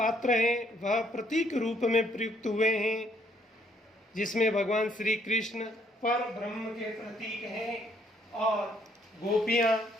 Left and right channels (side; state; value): both; normal; correlation 0.69